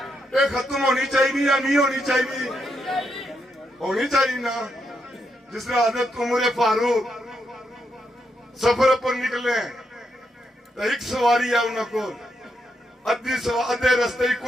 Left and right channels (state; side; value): normal; both; correlation 0.81